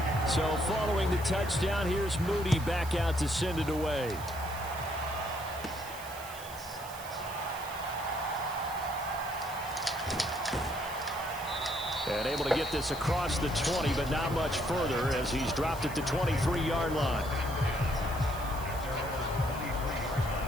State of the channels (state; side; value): noise; right; hiss, 15 dB below the sound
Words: So following the touchdown, here's Moody back out to send it away. And able to get this across the 20, but not much further as he's dropped at the 23-yard line.